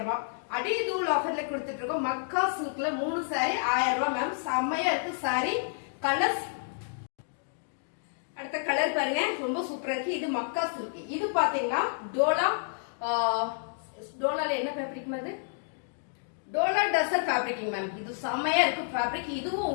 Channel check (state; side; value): silent; right; digital silence